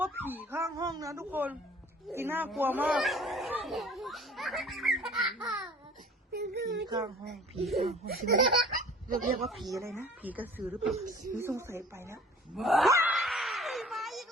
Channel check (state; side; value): normal; both; correlation 0.48